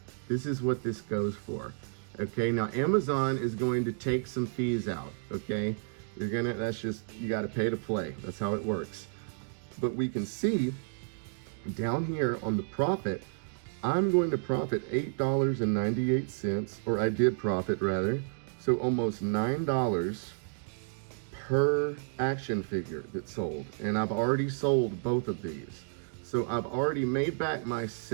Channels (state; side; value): silent; left; digital silence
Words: This is what this goes for. Okay, now Amazon is going to take some fees out. Okay, that's just, you got to pay to play. That's how it works. But we can see down here on the profit, I'm going to profit $8.98, or I did profit rather. So almost $9 per action figure that's sold. And I've already sold both of these. So I've already made back my